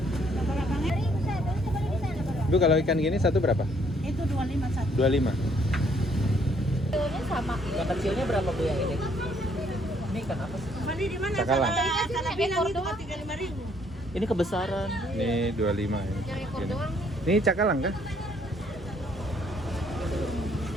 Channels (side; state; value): both; normal; correlation 0.66